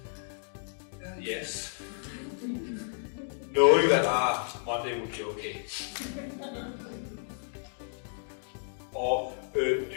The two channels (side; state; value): right; silent; digital silence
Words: Yes. Knowing that Monday will be okay. Or do